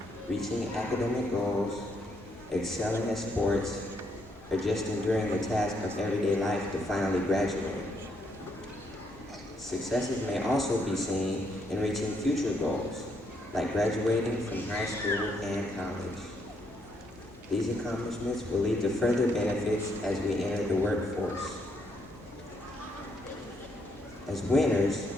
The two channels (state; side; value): normal; both; correlation 0.74